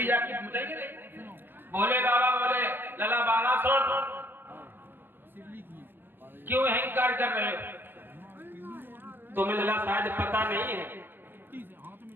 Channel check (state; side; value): late; left; 0.096 ms